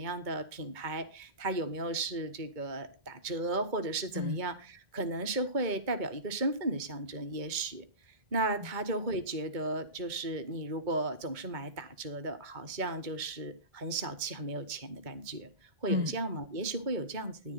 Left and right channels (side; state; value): left; late; 2.2 ms